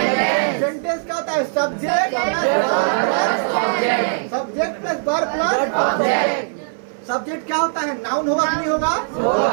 सेंटेंस क्या होता है? Subject Object. Subject plus verb plus Object. Subject क्या होता है? नाउन होगा कि नहीं होगा?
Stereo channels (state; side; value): silent; left; 64 dB below the other